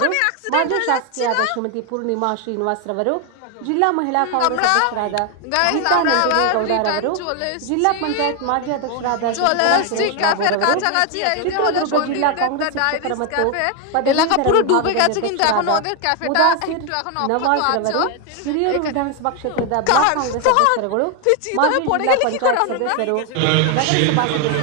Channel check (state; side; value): different; both; correlation 0.01